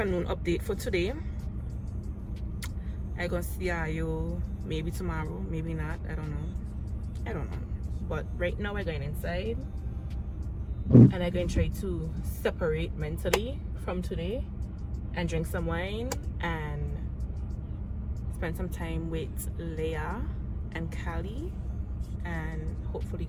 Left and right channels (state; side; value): identical; both; correlation 1.00